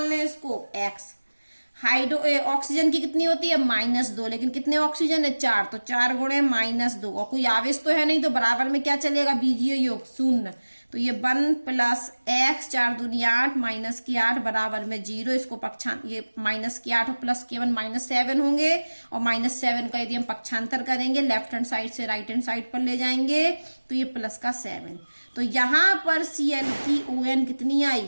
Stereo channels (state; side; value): inverted; both; correlation -1.00